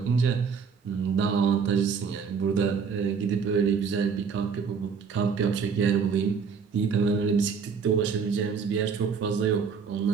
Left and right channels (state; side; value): quieter; left; 6.0 dB